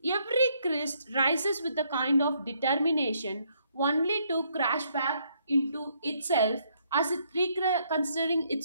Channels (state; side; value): inverted; both; correlation -0.71